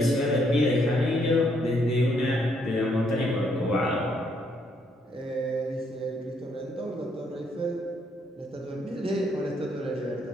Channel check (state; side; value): normal; both; correlation 0.72